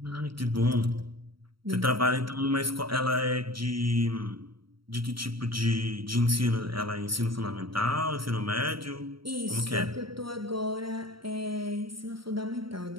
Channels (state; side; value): late; left; 0.74 ms